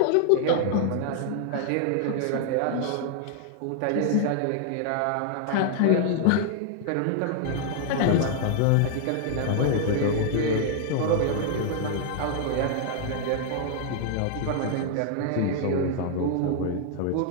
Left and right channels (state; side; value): different; both; correlation 0.00